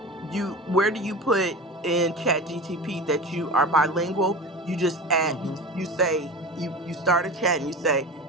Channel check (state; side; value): normal; both; correlation 0.31